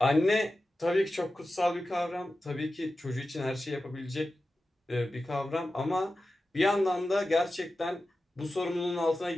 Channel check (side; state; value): both; normal; correlation 0.93